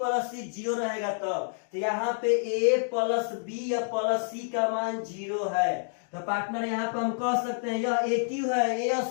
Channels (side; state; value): right; silent; digital silence